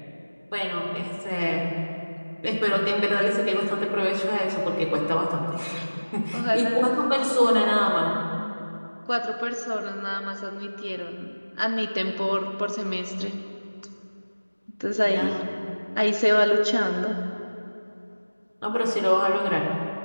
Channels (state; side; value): inverted; both; correlation -1.00